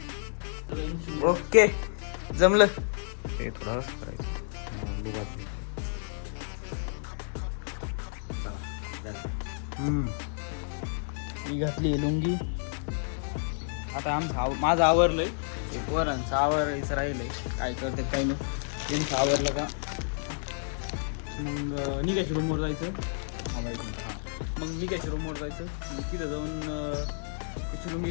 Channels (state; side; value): silent; right; digital silence